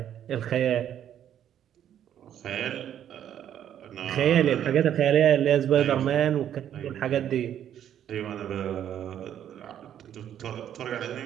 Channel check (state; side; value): quieter; left; 10.2 dB